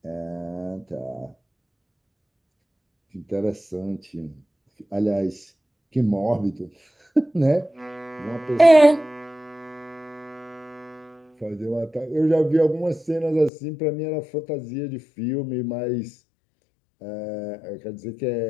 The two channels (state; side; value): drops out; right; at 13.5 s